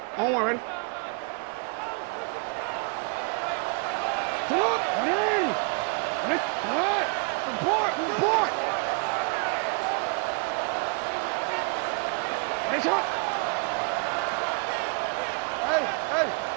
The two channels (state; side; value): quieter; left; 37.1 dB